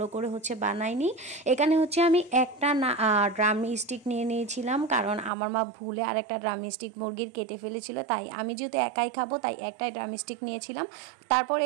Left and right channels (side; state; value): left; drops out; at 5.3 s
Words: করে বানাইনি। এখানে আমি একটা ড্রাম স্টিক নিয়ে নিয়েছিলাম, কারণ আমার মা ভুলে আর একটা ড্রাম স্টিক মুরগির কেটে ফেলেছিল, তাই আমি যেহেতু একাই খাবো তাই একটাই ড্রাম স্টিক নিয়েছিলাম। তারপর